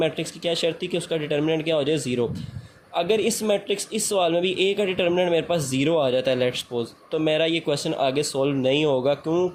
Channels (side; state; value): both; identical; correlation 1.00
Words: की क्या शर्त थी कि उसका डिटर्मिनेंट क्या हो जाए 0। अगर इस मैट्रिक्स इस सवाल में भी A का डिटर्मिनेंट मेरे पास 0 आ जाता है, लेट्स सपोज, तो मेरा ये क्वेश्चन आगे सॉल्व नहीं होगा।